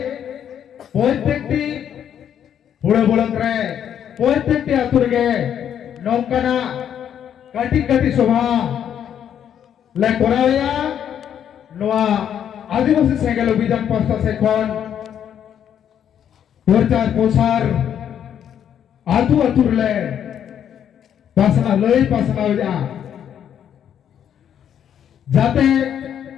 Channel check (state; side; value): quieter; right; 9.3 dB